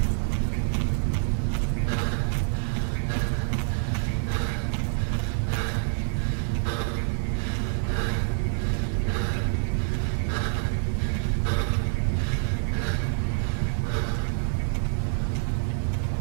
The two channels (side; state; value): left; silent; digital silence